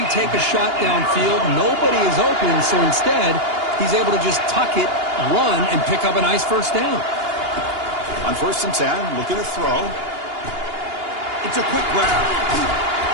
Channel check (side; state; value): left; late; 2.8 ms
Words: take a shot downfield. Nobody is open, so instead, he's able to just tuck it, run, and pick up a nice first down. On 1st and 10, looking to throw. It's a quick grab.